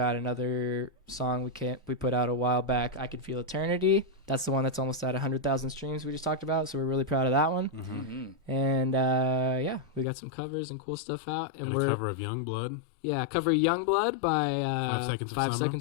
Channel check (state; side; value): drops out; right; at 10.1 s